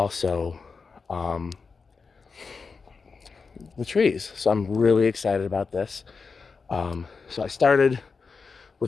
the trees. So I'm really excited about this. So I started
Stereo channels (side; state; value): right; quieter; 4.9 dB